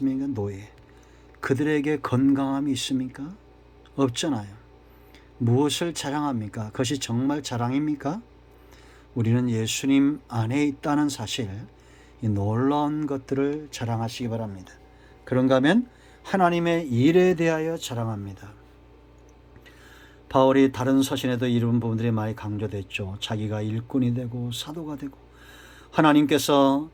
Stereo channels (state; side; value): identical; both; correlation 1.00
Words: 노예. 그들에게 건강함이 있습니까? 없잖아요. 무엇을 자랑합니까? 그것이 정말 자랑입니까? 우리는 예수님 안에 있다는 사실, 이 놀라운 것들을 자랑하시기 바랍니다. 그런가 하면 하나님의 일에 대하여 자랑합니다. 바울이 다른 서신에도 이런 부분들이 많이 강조됐죠. 자기가 일꾼이 되고 사도가 되고 하나님께서